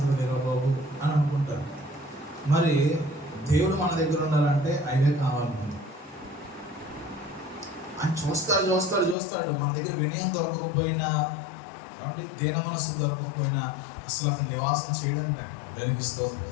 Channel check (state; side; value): drops out; right; at 9.2 s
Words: లేరు బాబు అని అనుకుంటారు. మరి దేవుడు మన దగ్గర ఉండాలంటే అవే కావాలి. ఆయన చూస్తాడు. మన దగ్గర వినయం దొరకకపోయినా, కాబట్టి దీన మనస్సు దొరకకపోయినా అసలు అతను నివాసం చేయడం దానికి స్తోత్రం.